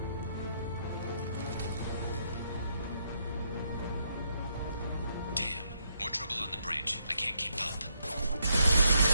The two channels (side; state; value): both; inverted; correlation -0.77